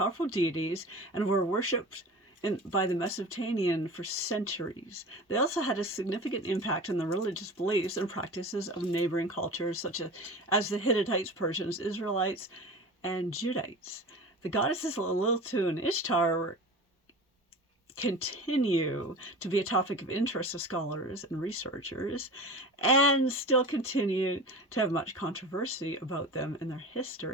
deities and were worshipped by the Mesopotamians for centuries. They also had a significant impact on the religious beliefs and practices of neighboring cultures such as the Hittites, Persians, Israelites, and Judites. The goddesses Lilithu and Ishtar continue to be a topic of interest to scholars and researchers, and still continue to have much controversy about them in their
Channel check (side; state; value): both; normal; correlation 0.34